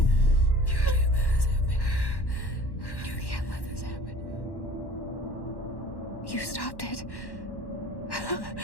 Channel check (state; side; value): late; right; 1.1 ms